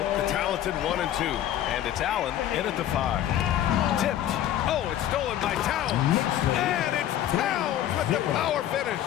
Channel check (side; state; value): right; quieter; 11.8 dB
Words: the talented 1 and 2. And it's Allen in at the 5. Tipped. Oh, it's stolen by Towns. And it's Towns with the power finish.